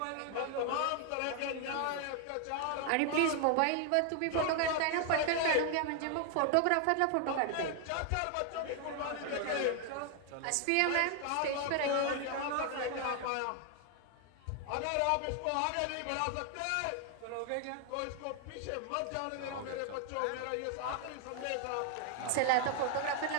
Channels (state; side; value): different; both; correlation 0.00